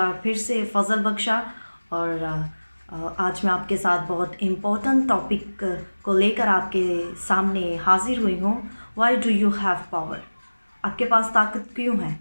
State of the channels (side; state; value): both; inverted; correlation -1.00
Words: फिर से फजल बख्शा और आज मैं आपके साथ बहुत इम्पोर्टेंट टॉपिक को लेकर आपके सामने हाजिर हुई हूँ। Why do you have power? आपके पास ताकत क्यों है?